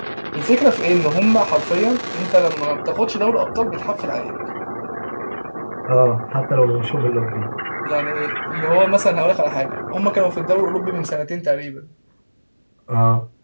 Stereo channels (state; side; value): inverted; both; correlation -1.00